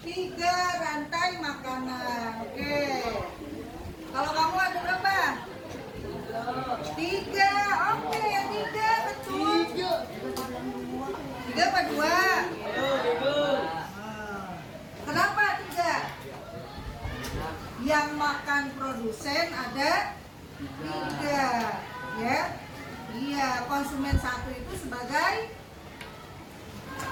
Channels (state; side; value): identical; both; correlation 1.00